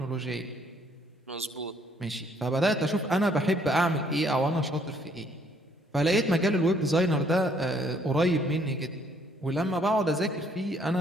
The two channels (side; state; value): both; normal; correlation 0.65